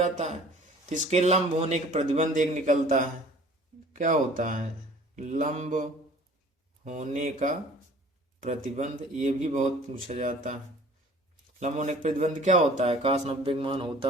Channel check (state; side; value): normal; both; correlation 0.49